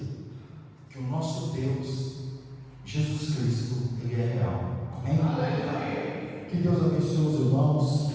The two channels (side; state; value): both; identical; correlation 1.00